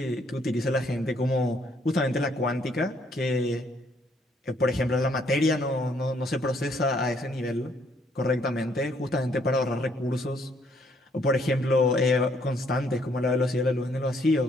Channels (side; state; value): both; normal; correlation 0.68